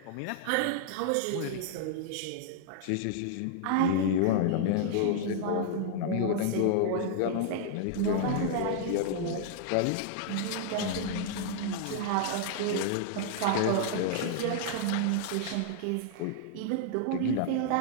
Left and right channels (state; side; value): different; both; correlation -0.01